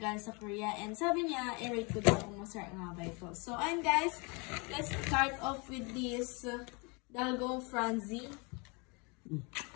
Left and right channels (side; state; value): right; quieter; 30.4 dB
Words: sa Korea. And sabi niya, i-rate ko daw kung masarap nga ba ito. So ayun guys, let's start off with this Dalgong Franzi.